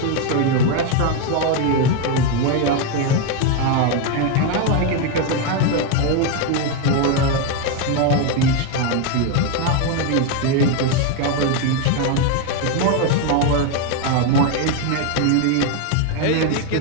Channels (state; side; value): different; both; correlation 0.02